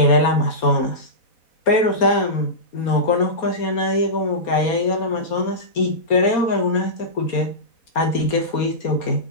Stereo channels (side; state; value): right; late; 4.3 ms